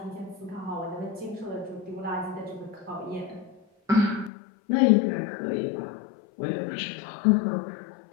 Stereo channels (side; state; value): right; drops out; at 4.3 s